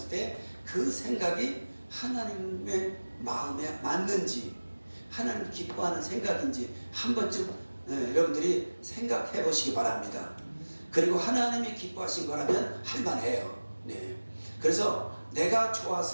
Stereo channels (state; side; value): inverted; both; correlation -1.00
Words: 때 그 생각이 하나님의 마음에 맞는지 하나님 기뻐하는 생각인지 한 번쯤 여러분들이 생각해 보시기 바랍니다. 그리고 하나님이 기뻐하신 거라면 할만해요. 네. 그래서 내가